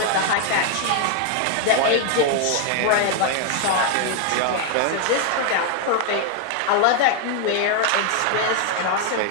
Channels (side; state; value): both; different; correlation 0.00